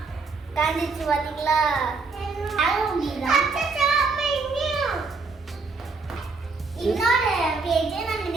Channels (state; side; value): quieter; left; 4.1 dB